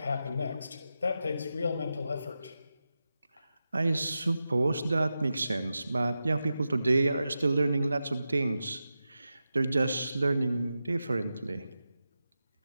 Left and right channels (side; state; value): both; inverted; correlation -0.91